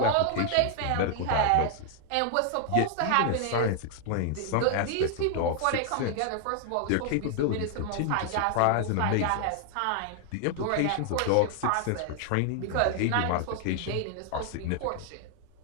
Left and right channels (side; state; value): both; different; correlation 0.00